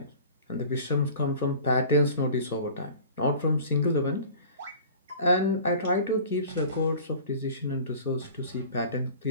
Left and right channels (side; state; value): both; inverted; correlation -0.43